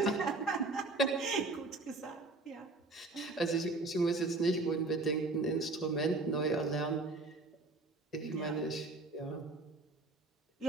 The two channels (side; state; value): left; quieter; 3.3 dB